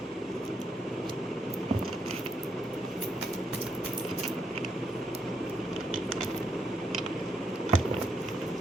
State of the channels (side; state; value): both; normal; correlation 0.77